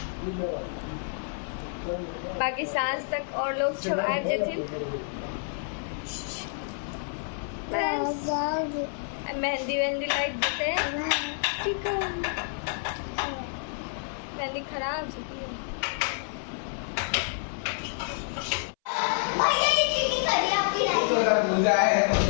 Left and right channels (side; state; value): right; silent; 59 dB below the other